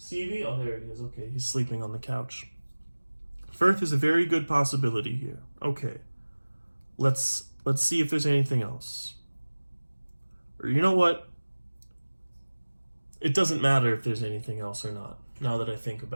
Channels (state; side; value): inverted; both; correlation -1.00